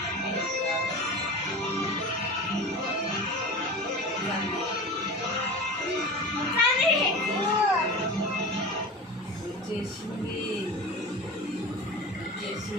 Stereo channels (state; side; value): normal; both; correlation 0.32